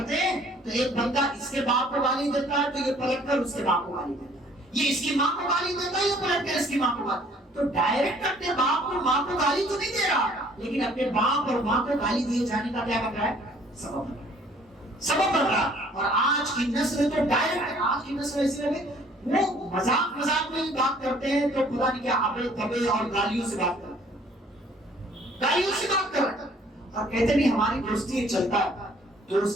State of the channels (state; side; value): normal; both; correlation 0.57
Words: ہیں تو ایک بندہ اس کے باپ کو گالی دیتا ہے تو یہ پلٹ کر اس کے باپ کو گالی دیتا ہے، یہ اس کی ماں کو گالی دیتا ہے، یہ پلٹ کر اس کی ماں کو گالی. تو ڈائریکٹ اپنے باپ اور ماں کو گالی تو نہیں دے رہا، لیکن اپنے باپ اور ماں کو گالی دیے جانے کا کیا بن رہا ہے؟ سبب بن رہا. اور آج کی نسل تو ڈائریکٹ، آج کی نسل ایسی ہے وہ مذاق میں ہی بات کرتے ہیں تو خدا نہیں کیا ابے تبے اور گالیوں سے بات کرتے ہیں، گالیوں سے بات کر رہے ہیں. اور کہتے نہیں ہماری دوستی چلتا ہے.